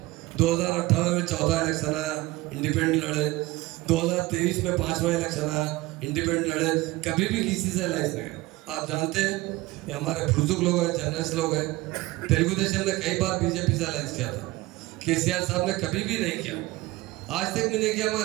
2018 में चौथा इलेक्शन आया इंडिपेंडेंट लड़े 2023 में 5वां इलेक्शन आया इंडिपेंडेंट लड़े कभी भी किसी से अलायंस नहीं आप जानते हैं ये हमारे बुजुर्ग लोग हैं जर्नलिस्ट लोग हैं तेलुगु देशम ने कई बार बीजेपी से अलायंस किया था केसीआर साहब ने कभी भी नहीं किया आज तक भी नहीं किया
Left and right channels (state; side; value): quieter; left; 19.7 dB